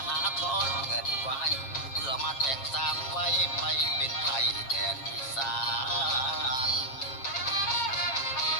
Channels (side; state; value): right; late; 7.5 ms